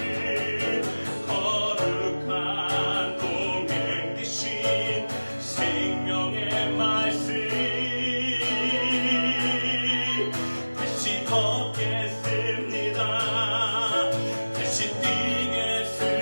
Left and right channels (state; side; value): inverted; both; correlation -1.00